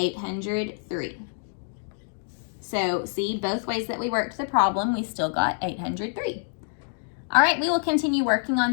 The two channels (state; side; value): silent; right; digital silence